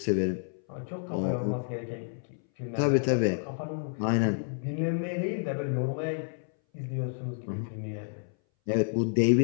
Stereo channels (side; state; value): right; silent; 58 dB below the other